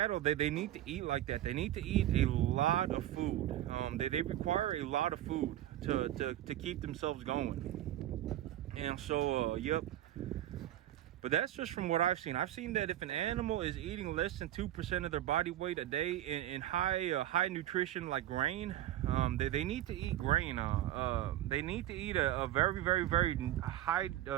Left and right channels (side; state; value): left; quieter; 13.0 dB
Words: they need to eat like that. They need to eat a lot of food. They require a lot of food to keep themselves going. And so, yep. But that's just from what I've seen. I've seen that if an animal is eating less than 2% of their body weight a day in high nutrition like grain, they need to eat grain. They need to eat a very, very, very high